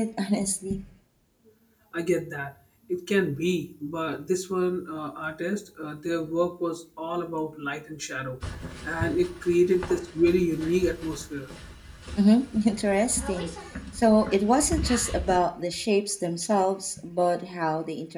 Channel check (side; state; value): both; identical; correlation 1.00